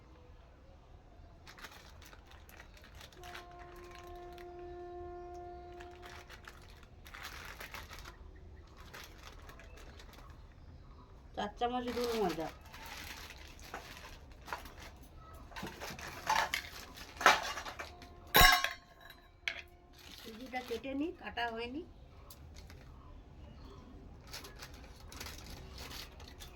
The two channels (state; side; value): identical; both; correlation 1.00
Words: গুঁড়ো ময়দা। সুজিটা কেটে নিই, কাটা হয়নি।